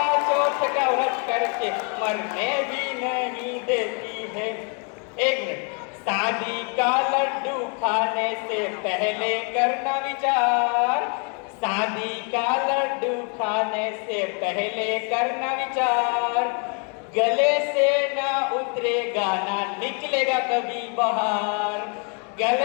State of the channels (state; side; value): quieter; right; 37.9 dB